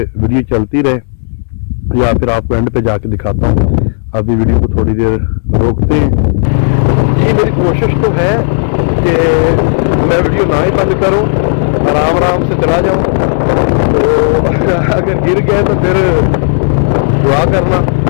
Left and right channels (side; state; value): right; silent; digital silence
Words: वीडियो चलती रहे या फिर आपको एंड पे जाके दिखाता हूँ। अभी वीडियो को थोड़ी देर रोकते हैं। ये मेरी कोशिश तो है कि मैं वीडियो ना ही बंद करूं, आराम आराम से चला जाऊं। तो अगर गिर गए तो फिर दुआ करना,